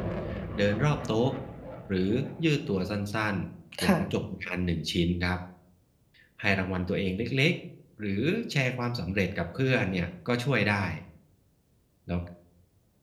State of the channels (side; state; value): both; identical; correlation 1.00